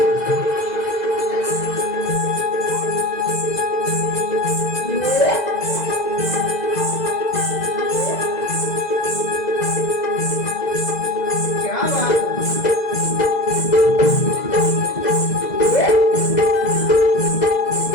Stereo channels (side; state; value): right; late; 2.0 ms